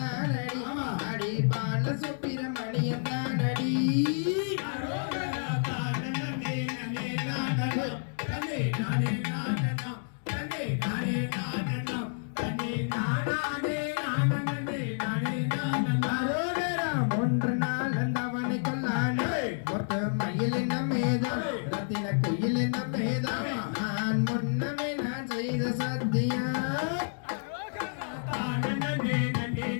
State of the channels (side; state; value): right; silent; digital silence